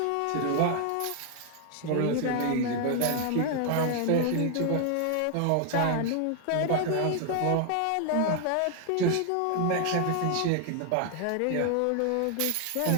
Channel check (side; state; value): both; different; correlation 0.00